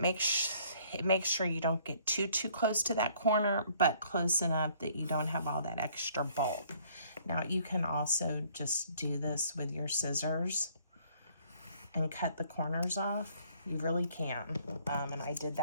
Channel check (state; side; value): inverted; both; correlation -0.61